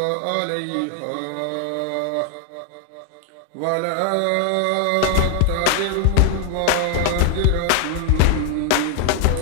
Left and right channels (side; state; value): both; different; correlation 0.00